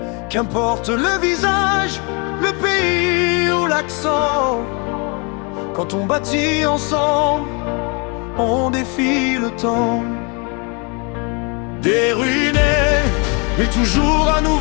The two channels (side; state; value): right; quieter; 32.8 dB